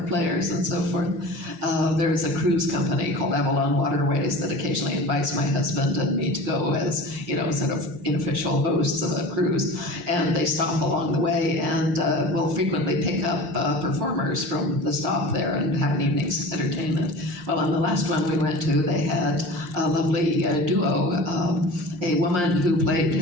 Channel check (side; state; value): left; late; 5.7 ms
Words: players and so forth. There's a cruise company called Avalon Waterways that occasionally invites my husband and me to go as, sort of unofficial hosts of a cruise. And they stop along the way and will frequently pick up performers from the stop there and have an evening's entertainment. Well, on the last one we went to, they had a lovely duo. A woman who